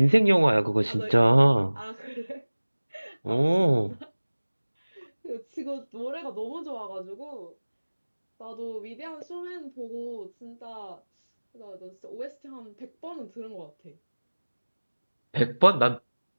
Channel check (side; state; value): both; inverted; correlation -1.00